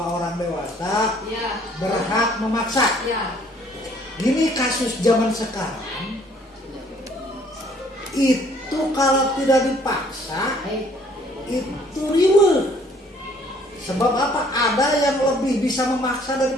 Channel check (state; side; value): normal; both; correlation 0.60